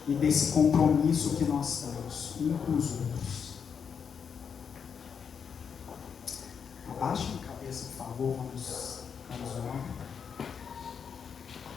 e desse compromisso que nós temos uns com os outros. Abaixem a cabeça, por favor, vamos orar.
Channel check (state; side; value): quieter; right; 6.8 dB